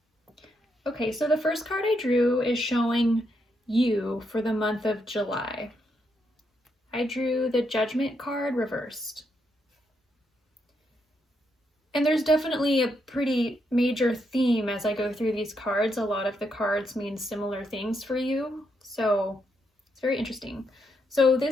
Okay, so the first card I drew is showing you for the month of July. I drew the Judgment card reversed. And there's definitely a pretty major theme as I go through these cards. A lot of the cards mean similar things for you, so it's very interesting. So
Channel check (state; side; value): normal; both; correlation 0.79